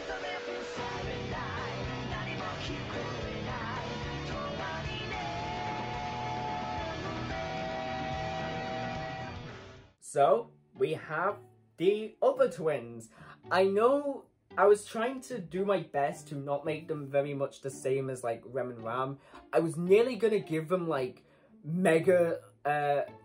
So, we have the other twins. I know I was trying to do my best to not make them very much the same as, like, Rem and Ram. I was nearly gonna give them, like, Mega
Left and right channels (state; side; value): identical; both; correlation 1.00